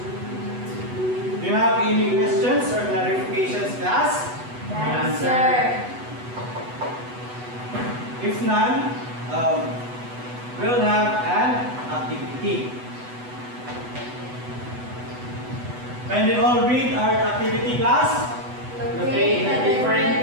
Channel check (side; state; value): left; late; 8.1 ms